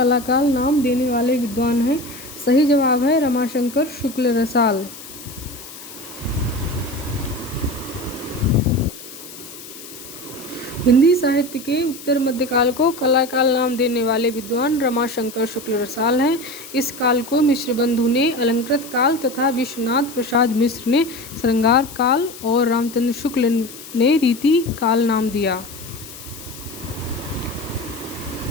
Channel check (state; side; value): noise; left; hiss, 15 dB below the sound